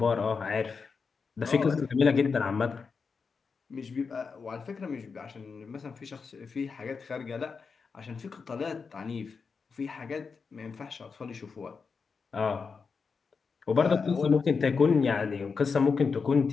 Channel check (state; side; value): quieter; right; 5.2 dB